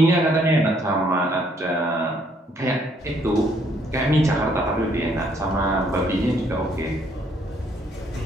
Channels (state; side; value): normal; both; correlation 0.67